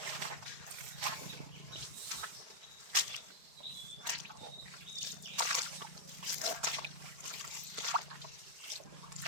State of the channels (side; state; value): left; late; 4.3 ms